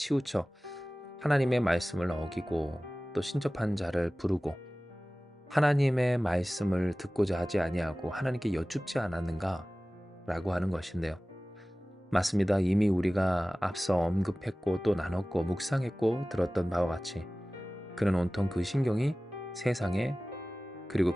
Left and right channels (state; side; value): normal; both; correlation 0.97